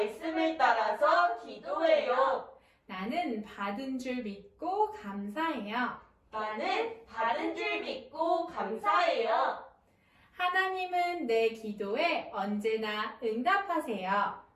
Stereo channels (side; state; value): both; identical; correlation 1.00